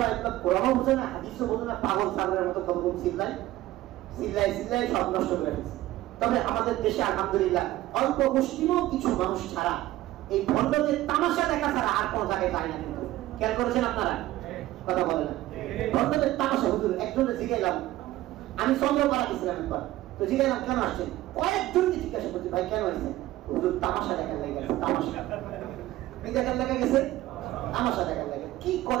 একদম কোরআনও বোঝে না, হাদিসও বোঝে না, পাগল ছাগলের মতো কতক্ষণ চিল্লাই সব নষ্ট করে ফেলছে। তবে আমাদের দেশে আলহামদুলিল্লাহ অল্প মুসলিমও কিছু মানুষ ছাড়া এই ভণ্ডদের তামাশা দেখা ছাড়া আর কোন জায়গায় যায় না। কিন্তু খেয়াল করেছেন আপনারা? কথা বলে না ভণ্ডদের তামাশা। হুজুর একজনে জিজ্ঞাসলাম, আমি চন্দ্রপাড়া গেছিলাম একবার, তো জিজ্ঞাসলাম কেন আসছেন? কয়েকজনকে জিজ্ঞাসা করছি ভাই কেন আসছেন? হুজুর তামাশা দেখার লেগে গেছে। তামাশা কি দেখার লেগে গেছে? তামাশা দেখার লেগে। কি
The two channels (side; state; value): left; quieter; 16.0 dB